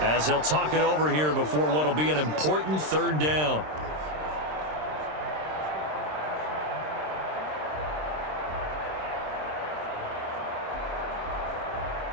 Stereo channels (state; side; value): late; left; 26 ms